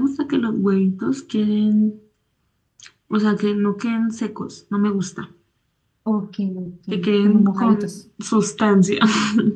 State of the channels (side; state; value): both; identical; correlation 1.00